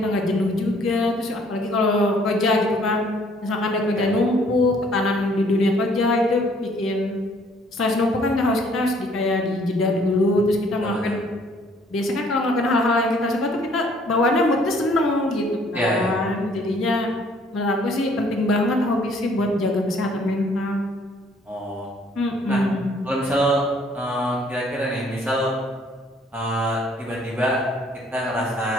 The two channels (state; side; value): normal; both; correlation 0.61